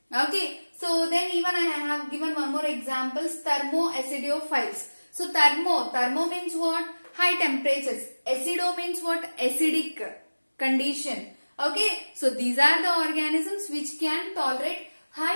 Okay, so then even I have given one more example, thermoacidophiles. So thermo means what? High temperatures. Acido means what? Acidic condition. Okay, so these are the organisms which can tolerate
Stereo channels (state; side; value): inverted; both; correlation -1.00